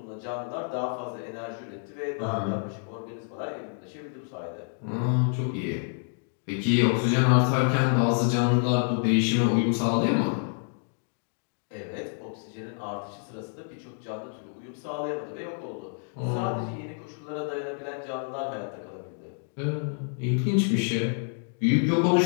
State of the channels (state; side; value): silent; right; 59 dB below the other